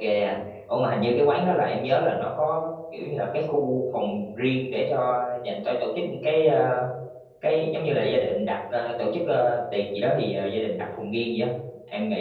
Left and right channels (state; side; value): identical; both; correlation 1.00